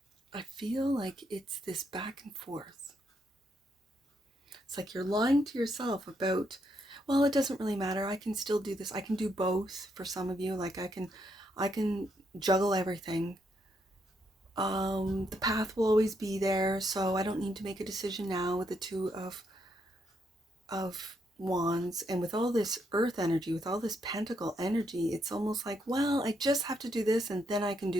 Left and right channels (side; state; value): both; normal; correlation 0.77